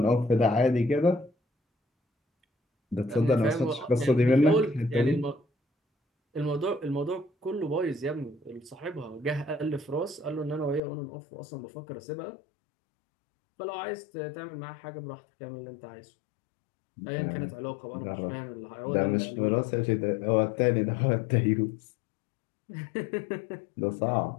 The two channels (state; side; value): drops out; right; at 10.8 s